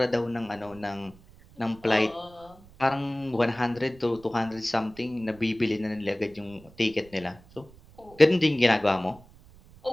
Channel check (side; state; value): right; noise; rumble, 24 dB below the sound